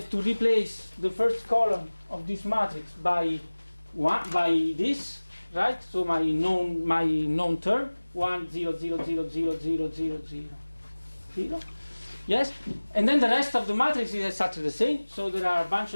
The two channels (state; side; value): inverted; both; correlation -1.00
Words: to replace the first column of this matrix by this, right? So my known term 1 0 0 0 0 0 0 0. Yes, and then the rest of the matrix is exactly the same. So there are a bunch